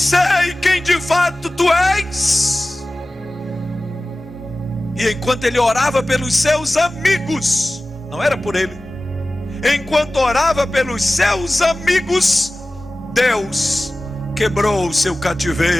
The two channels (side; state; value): both; normal; correlation 0.97